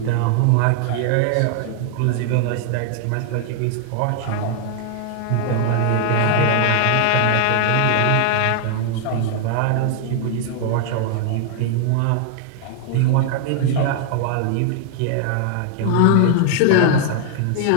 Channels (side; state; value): both; different; correlation 0.00